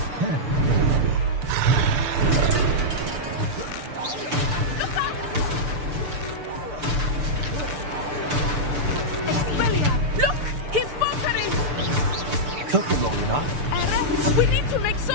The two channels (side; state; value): left; late; 6.8 ms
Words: Expelliarm! Look! He's faltering! Took him long enough. We need to make